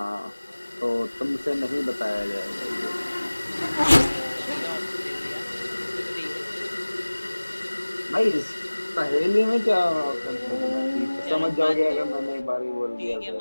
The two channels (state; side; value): inverted; both; correlation -1.00